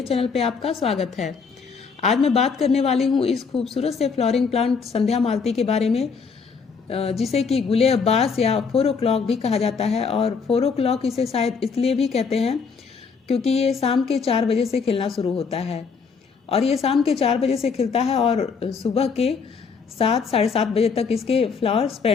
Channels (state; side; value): quieter; right; 5.4 dB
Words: चैनल पे आपका स्वागत है। आज मैं बात करने वाली हूं इस खूबसूरत से फ्लोरिंग प्लांट संध्या मालती के बारे में, जिसे कि गुले अब्बास या 4 o'clock भी कहा जाता है। और 4 o'clock इसे शायद इसलिए भी कहते हैं क्योंकि ये शाम के 4 बजे से खिलना शुरू होता है और ये शाम के 4 बजे से खिलता है और सुबह के 7 साढ़े 7 बजे तक इसके फ्लावर